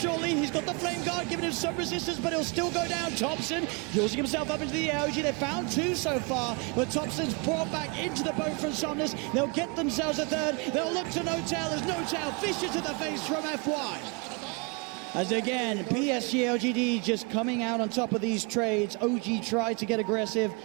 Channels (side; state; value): left; quieter; 30.8 dB